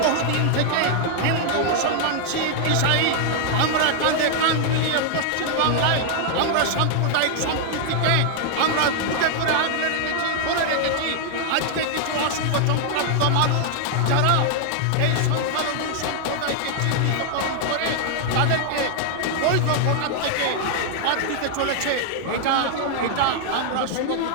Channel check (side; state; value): both; different; correlation 0.00